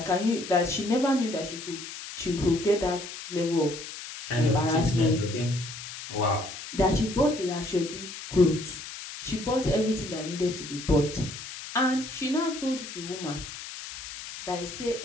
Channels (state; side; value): noise; left; hiss, 11 dB below the sound